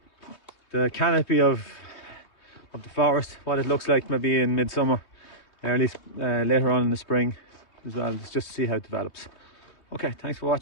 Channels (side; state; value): right; late; 3.2 ms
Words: canopy of the forest, what it looks like maybe in midsummer, or at least later on in the spring as well, just to see how it develops. Okay, thanks for